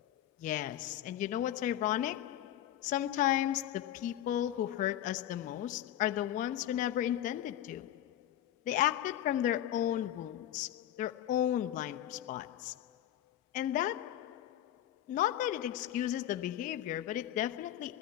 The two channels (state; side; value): quieter; right; 12.1 dB